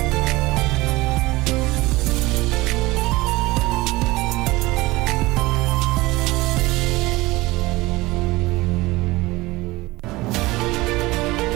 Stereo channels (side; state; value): left; quieter; 20.6 dB